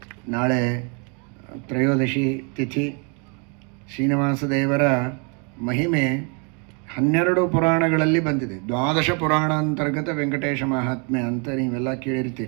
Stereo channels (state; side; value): quieter; left; 35.6 dB